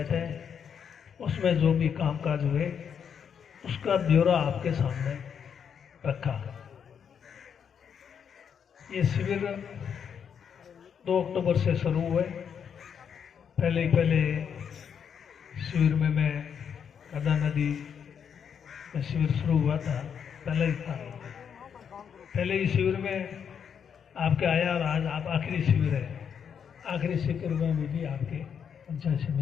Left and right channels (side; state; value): right; quieter; 7.5 dB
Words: है उसमें जो भी कामकाज हुए उसका ब्यौरा आपके सामने रखा। ये शिविर 2 अक्टूबर से शुरू हुए। पहले शिविर में मैं गदा नदी में शिविर शुरू हुआ था, पहले ही था। पहले ही शिविर में आपके आया और आज आप आखिरी शिविर है। आखिरी शिविर में भी आपके पंचायत